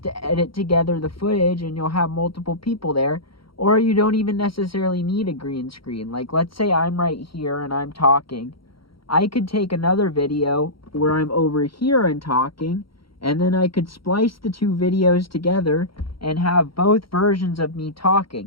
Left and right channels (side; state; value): right; late; 0.74 ms